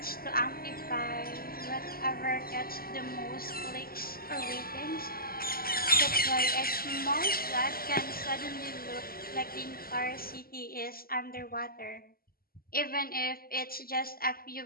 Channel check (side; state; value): right; late; 0.43 ms